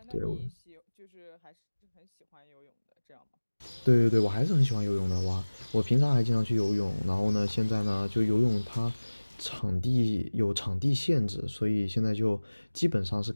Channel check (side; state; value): both; inverted; correlation -1.00